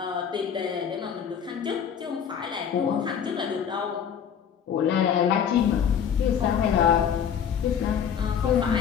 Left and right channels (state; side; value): quieter; right; 8.0 dB